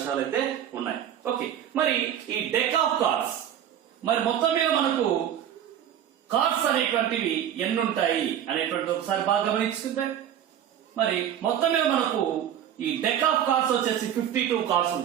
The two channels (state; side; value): quieter; left; 10.2 dB